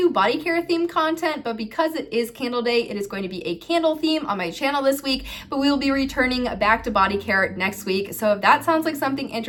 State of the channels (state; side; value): identical; both; correlation 1.00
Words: body care themed content, but because it is Candle Day, it is going to be a candle theme on my channel this week, but we will be returning back to body care next week. So if that sounds like something